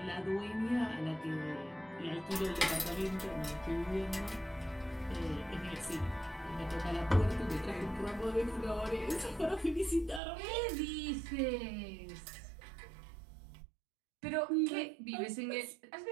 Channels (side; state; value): left; drops out; at 10.2 s